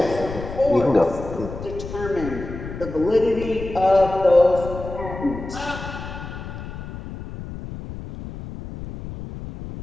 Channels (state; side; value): noise; left; rumble, 10 dB below the sound